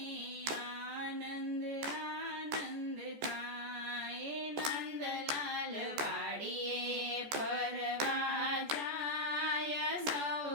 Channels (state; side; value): late; left; 14 ms